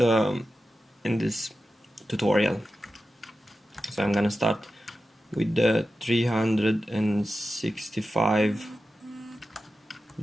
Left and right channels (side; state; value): both; normal; correlation 0.92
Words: tutorial. So I'm gonna start with the 365